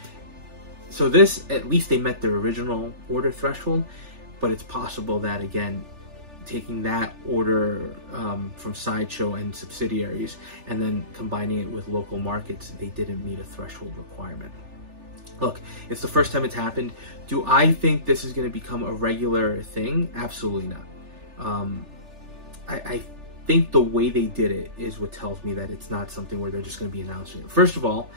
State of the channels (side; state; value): left; late; 3.4 ms